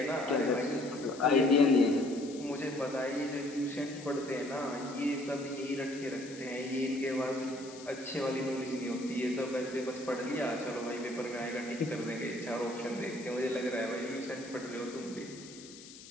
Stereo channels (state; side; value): noise; left; hiss, 17 dB below the sound